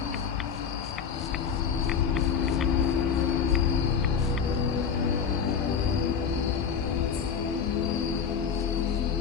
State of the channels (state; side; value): quieter; right; 6.9 dB